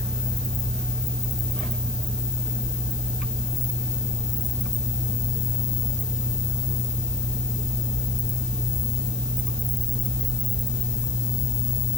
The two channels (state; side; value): noise; left; hiss, 14 dB below the sound